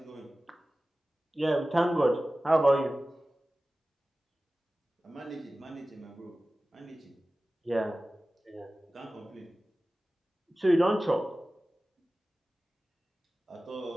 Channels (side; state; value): both; normal; correlation 0.96